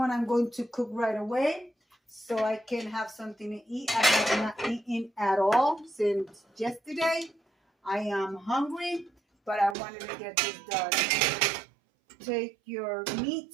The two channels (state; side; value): drops out; left; at 9.8 s